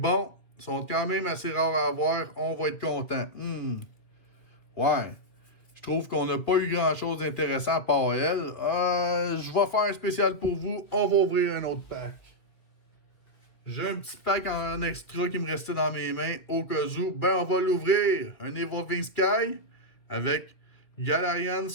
ils sont quand même assez rares à avoir. On va être content. Ouais. Je trouve qu'on n'a pas eu grand-chose d'intéressant à part elle. Je vais faire un spécial pour vous. On va ouvrir un autre pack. J'ai un petit pack en extra qui me restait dans mes mains. Au cas où, on va l'ouvrir. Un Evolving Sky avec Galarian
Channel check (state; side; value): late; right; 2.0 ms